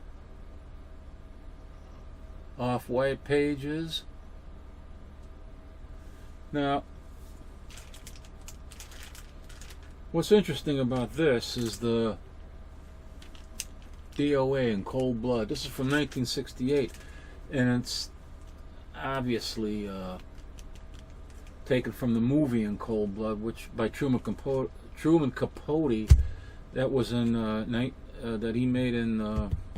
Off-white pages. Now, what's interesting about this is the DOA in Cold Blood. This is from 1968, and it's obviously taken from the movie in Cold Blood, which by Truman Capote, that was in that he made in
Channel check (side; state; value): both; identical; correlation 1.00